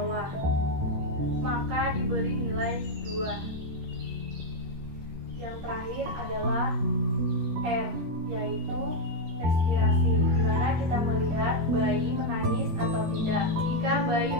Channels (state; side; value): late; left; 13 ms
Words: maka diberi nilai 2. Yang terakhir adalah R, yaitu respirasi, di mana kita melihat bayi menangis atau tidak. Jika bayi